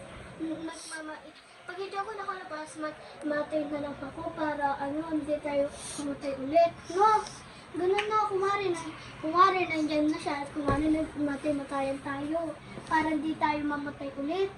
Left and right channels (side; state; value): both; identical; correlation 1.00